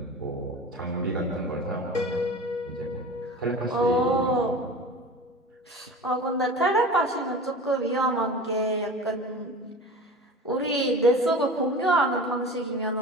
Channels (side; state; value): both; normal; correlation 0.36